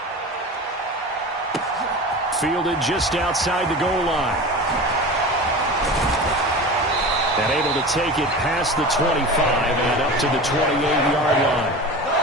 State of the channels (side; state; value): both; normal; correlation 0.32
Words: Fielded just outside the goal line. And able to take it past the 25 and up to the 28-yard line.